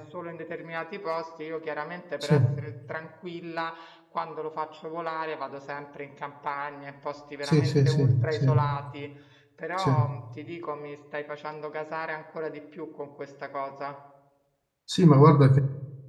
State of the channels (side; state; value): both; identical; correlation 1.00